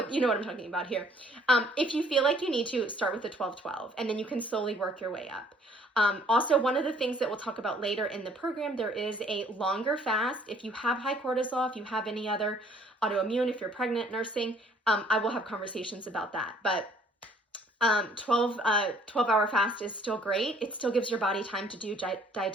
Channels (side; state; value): both; normal; correlation 0.60